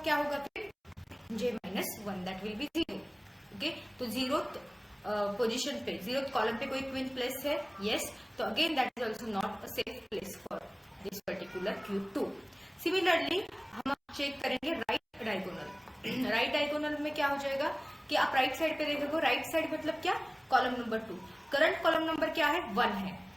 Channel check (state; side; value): identical; both; correlation 1.00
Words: होगा फिर, जे -1, दैट विल बी 0, ओके। तो 0 पोजीशन पे, 0th कॉलम पे कोई क्वीन प्लेस है, यस, तो again that is also not a safe place for this particular Q 2। Similarly हम चेक करेंगे राइट डायगोनल। राइट डायगोनल में क्या हो जाएगा कि आप राइट साइड पे देखोगे, राइट साइड मतलब क्या, column number 2, current column number क्या है 1 है,